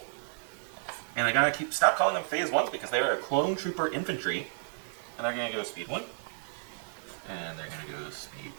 And I gotta stop calling them phase 1s because they are clone trooper infantry. And they're going to go speed 1. And they're going to go speed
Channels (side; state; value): left; silent; digital silence